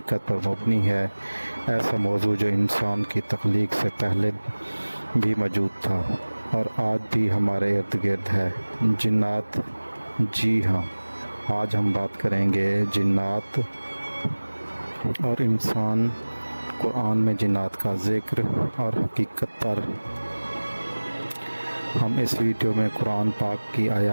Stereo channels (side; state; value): both; inverted; correlation -1.00